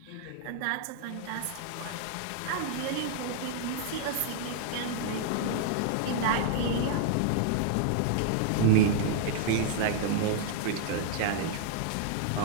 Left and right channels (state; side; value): different; both; correlation 0.00